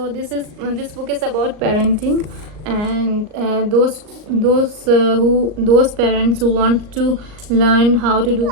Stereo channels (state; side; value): late; left; 38 ms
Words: this book is about parenting, and those parents who want to learn how to do